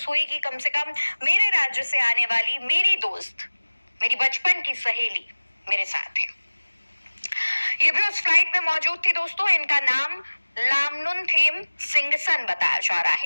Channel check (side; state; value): both; inverted; correlation -1.00